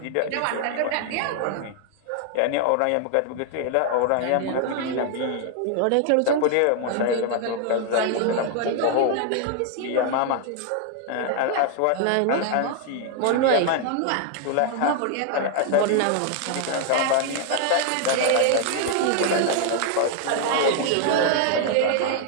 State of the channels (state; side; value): different; both; correlation 0.00